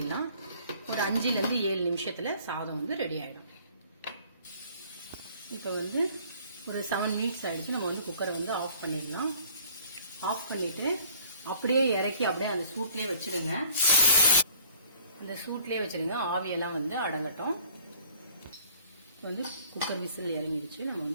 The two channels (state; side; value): inverted; both; correlation -0.56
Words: ஒரு 5 to 7 நிமிஷத்துல சாதம் வந்து ரெடி ஆயிடும். இப்போ வந்து ஒரு 7 மினிட்ஸ் ஆயிடுச்சு. நம்ம வந்து குக்கரை வந்து ஆஃப் பண்ணிடலாம். ஆஃப் பண்ணிட்டு அப்படியே இறக்கி அப்படியே அந்த சூட்லேயே வச்சிடுங்க. அந்த சூட்லேயே வச்சிடுங்க, ஆவியெல்லாம் வந்து அடங்கட்டும். இப்போ வந்து குக்கர் விசில் இறங்கிடுச்சு. நம்ம